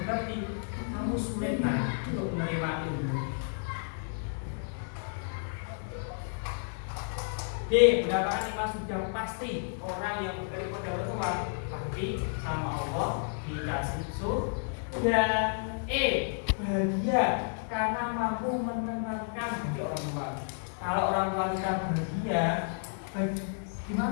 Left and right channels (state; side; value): silent; right; 57 dB below the other